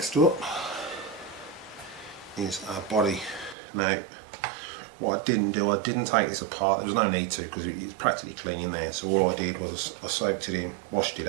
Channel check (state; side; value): drops out; left; at 3.6 s